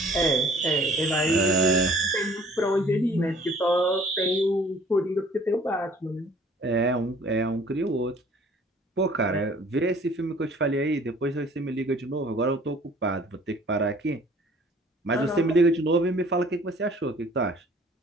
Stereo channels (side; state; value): both; normal; correlation 0.53